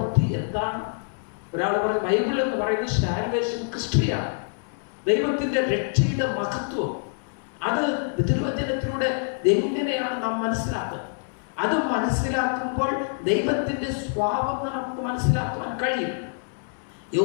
എന്താണ്. ഒരാൾ പറയും ബൈബിൾ എന്ന് പറയുന്നത് സാൽവേഷൻ ക്രിസ്റ്റിയാണ്, ദൈവത്തിൻ്റെ രക്ഷയുടെ മഹത്വം. അത് തിരുവചനത്തിലൂടെ എങ്ങനെയാണ് നാം മനസ്സിലാക്കുന്നത്? അത് മനസ്സിലാക്കുമ്പോൾ ദൈവത്തിൻ്റെ സ്വഭാവം നമുക്ക് മനസ്സിലാക്കുവാൻ കഴിയും.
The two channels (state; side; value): silent; right; digital silence